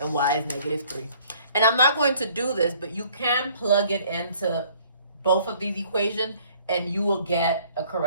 y is negative 3. And I'm not going to do this, but you can plug it into both of these equations and you will get a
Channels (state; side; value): inverted; both; correlation -0.59